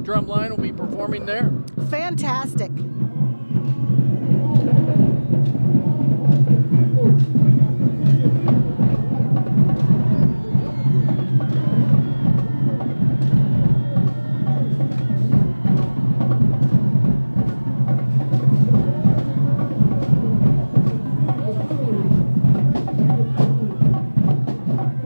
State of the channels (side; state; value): both; inverted; correlation -1.00